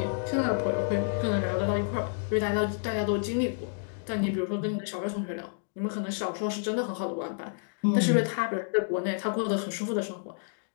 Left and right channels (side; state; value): right; silent; digital silence